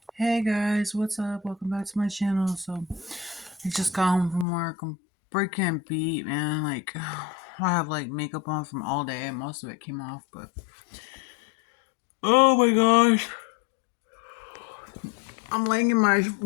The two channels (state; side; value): drops out; right; at 4.5 s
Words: Hey guys, what's up? Welcome back to my channel. So, I just got home from work. I'm freaking beat, man. Like, I have like makeup on from all day, and most of it came off, but oh my gosh, I'm laying in